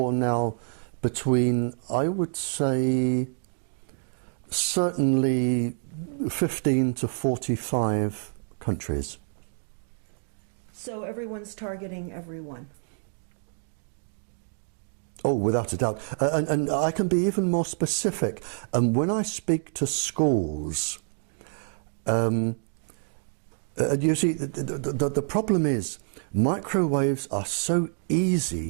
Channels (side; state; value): left; silent; 56 dB below the other